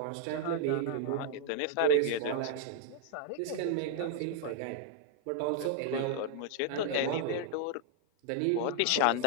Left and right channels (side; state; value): both; different; correlation -0.01